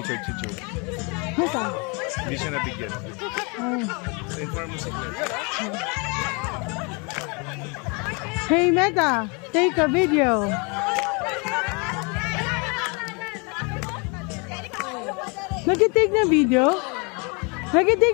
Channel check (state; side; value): quieter; right; 31.8 dB